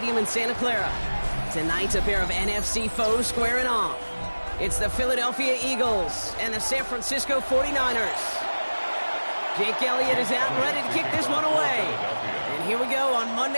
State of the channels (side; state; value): both; inverted; correlation -1.00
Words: in Santa Clara. Tonight's a pair of NFC foes squaring off. It's the Philadelphia Eagles and the San Francisco 49ers. Jake Elliott is out and ready to kick this one away. And here we go on